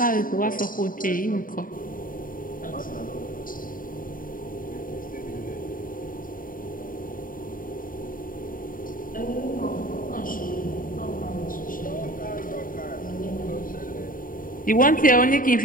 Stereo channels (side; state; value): right; late; 0.40 ms